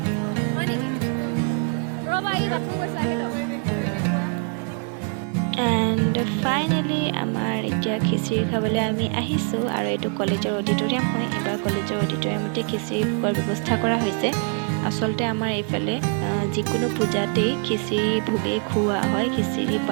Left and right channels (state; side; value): quieter; left; 40.0 dB